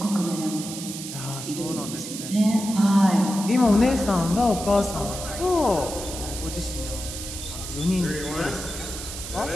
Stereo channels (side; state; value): right; noise; hiss, 9 dB below the sound